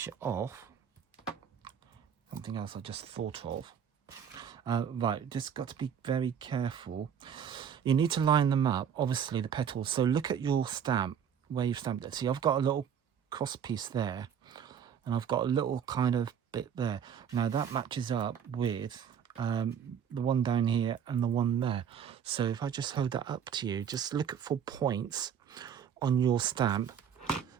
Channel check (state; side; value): quieter; left; 8.0 dB